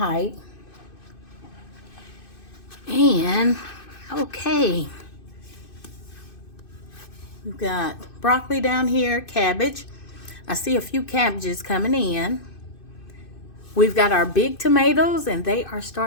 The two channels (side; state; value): right; late; 2.6 ms